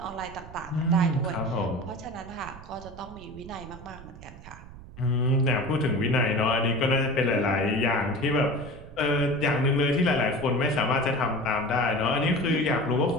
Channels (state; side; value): noise; right; rumble, 17 dB below the sound